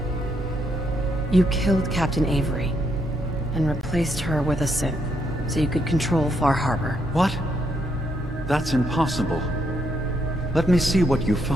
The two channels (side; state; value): both; normal; correlation 0.76